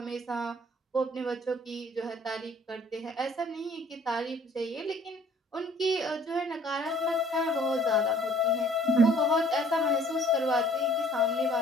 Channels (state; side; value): normal; both; correlation 0.56